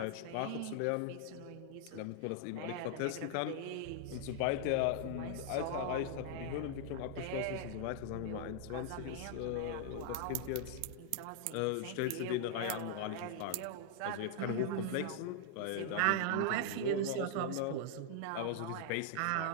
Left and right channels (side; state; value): both; different; correlation 0.00